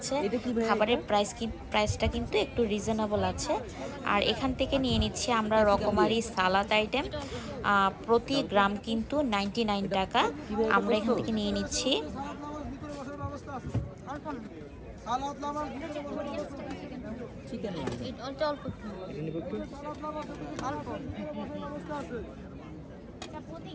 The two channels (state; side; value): identical; both; correlation 1.00